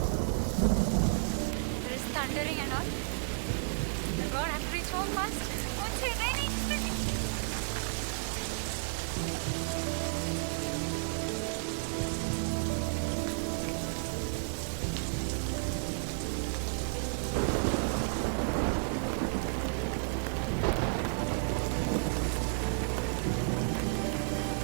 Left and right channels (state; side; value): silent; left; digital silence